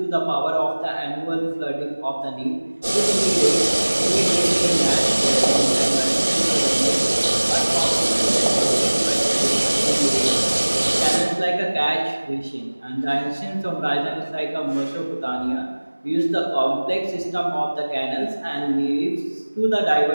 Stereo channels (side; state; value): both; inverted; correlation -1.00